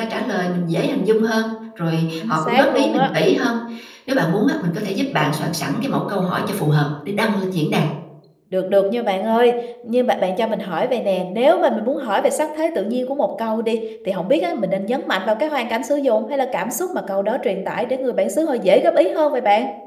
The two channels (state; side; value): identical; both; correlation 1.00